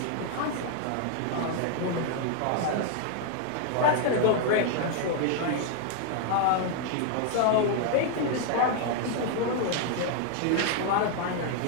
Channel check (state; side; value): different; both; correlation 0.00